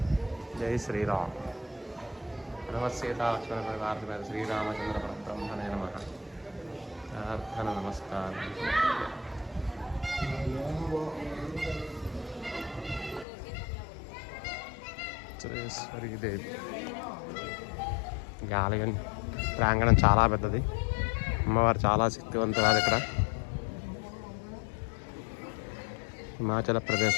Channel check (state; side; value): drops out; right; at 13.2 s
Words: జై శ్రీరామ్. సీతా లక్ష్మణ పరివార శ్రీరామచంద్ర పరబ్రహ్మణే నమః. ప్రార్థన నమస్కారం. వజ్రేశ్వరీదేవి. ఈ ఆలయం ప్రాంగణం చాలా పెద్దది. అమ్మవారు చాలా శక్తివంతురాలు. ఇక్కడ హిమాచల్